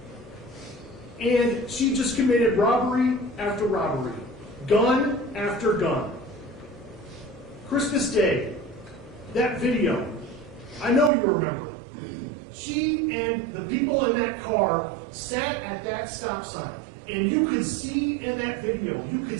And she just committed robbery after robbery, gun after gun. Christmas Day, that video, I know you remember it. She and the people in that car sat at that stop sign, and you could see in that video, you could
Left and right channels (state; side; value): drops out; left; at 11.1 s